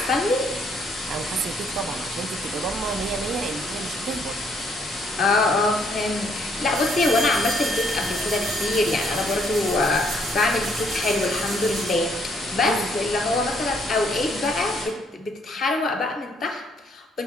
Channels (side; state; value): both; normal; correlation 0.68